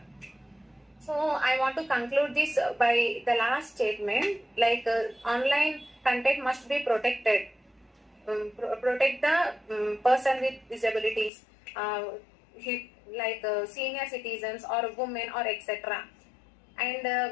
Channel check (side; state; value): right; drops out; at 11.3 s